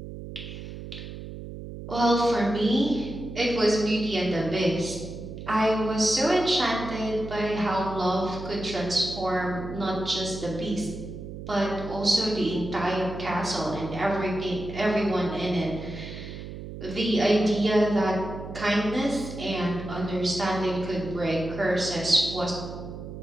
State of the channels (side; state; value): right; noise; hum, 10 dB below the sound